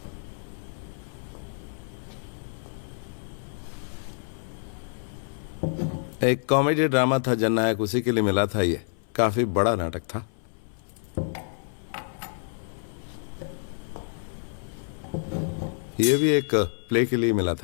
एक कॉमेडी ड्रामा था जननायक, उसी के लिए मिला था। ये काफी बड़ा नाटक था। ये भी एक प्ले के लिए मिला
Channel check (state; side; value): silent; right; 59 dB below the other